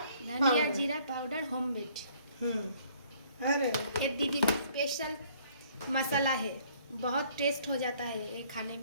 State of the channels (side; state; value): both; inverted; correlation -0.60